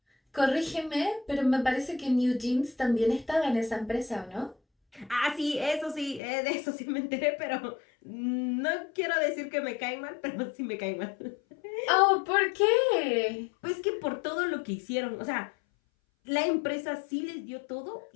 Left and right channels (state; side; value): drops out; right; at 6.2 s